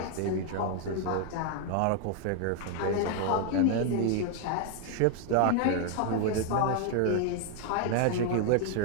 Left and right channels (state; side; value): different; both; correlation 0.00